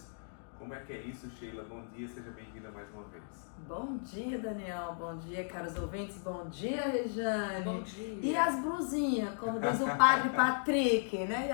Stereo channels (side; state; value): right; silent; digital silence